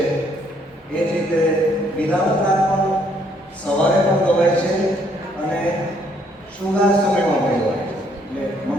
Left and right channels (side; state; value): both; normal; correlation 0.67